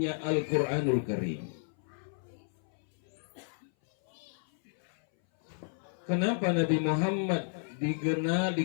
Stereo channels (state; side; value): silent; right; 56 dB below the other